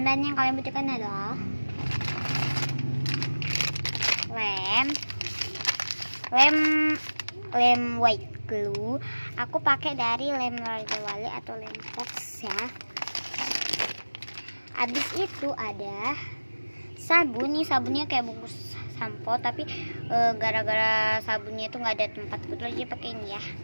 yang kalian butuhkan adalah lem white glue. Aku pakai dari lem Raja Wali atau lem Fox ya. Habis itu ada sabun. Nih sabunnya kayak bungkus sampo, tapi gara-gara sabunnya itu nggak ada tempat betul aja pakai ini ya,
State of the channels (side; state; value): both; inverted; correlation -1.00